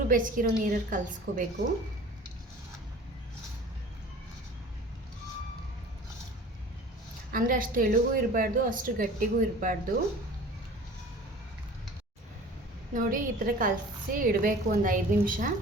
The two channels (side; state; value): both; normal; correlation 0.43